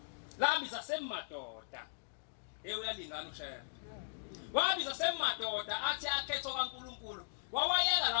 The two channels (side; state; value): right; silent; digital silence